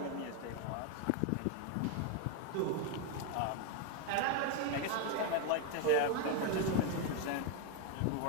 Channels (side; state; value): both; different; correlation 0.01